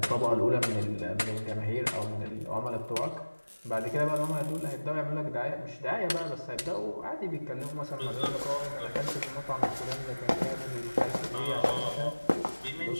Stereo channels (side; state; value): both; inverted; correlation -1.00